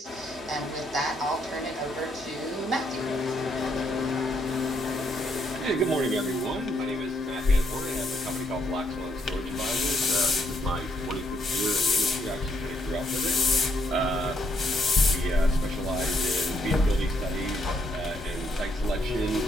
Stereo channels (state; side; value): normal; both; correlation 0.73